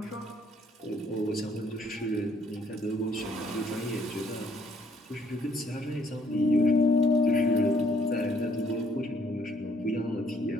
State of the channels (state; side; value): normal; both; correlation 0.66